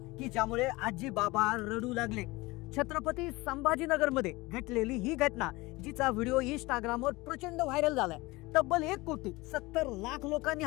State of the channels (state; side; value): quieter; right; 21.8 dB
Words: की ज्यामुळे आजी बाबा रडू लागले। छत्रपती संभाजीनगर मध्ये घडलेली ही घटना जिचा व्हिडिओ इंस्टाग्रामवर प्रचंड व्हायरल झालाय। तब्बल 1,70,00,000 लोकांनी